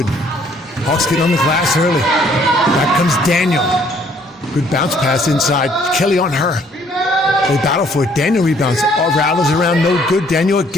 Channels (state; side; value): normal; both; correlation 0.63